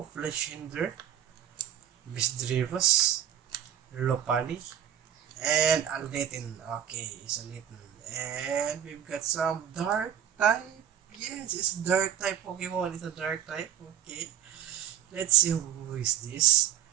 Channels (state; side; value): quieter; left; 10.2 dB